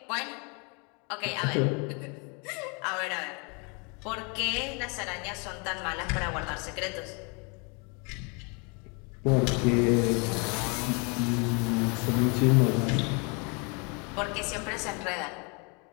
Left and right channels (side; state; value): right; quieter; 33.0 dB